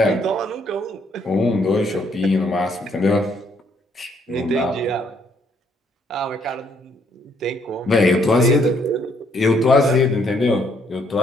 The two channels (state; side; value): normal; both; correlation 0.69